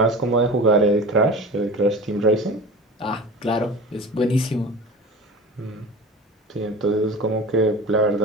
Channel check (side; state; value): both; normal; correlation 0.35